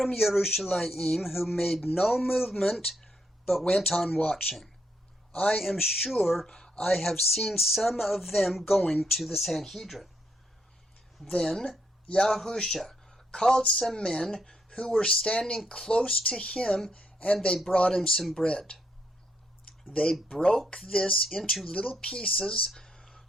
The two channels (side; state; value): both; normal; correlation 0.76